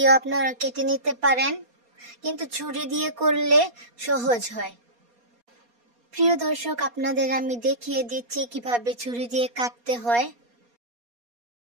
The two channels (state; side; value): late; left; 4.2 ms